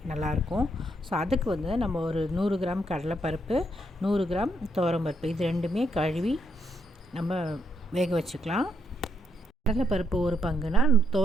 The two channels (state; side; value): normal; both; correlation 0.77